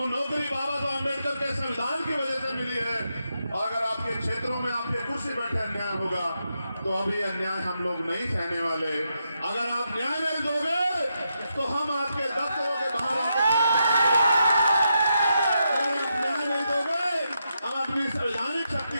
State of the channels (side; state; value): both; inverted; correlation -0.84